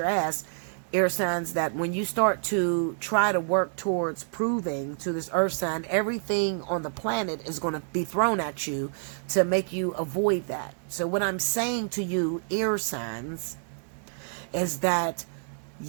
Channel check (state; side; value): silent; left; digital silence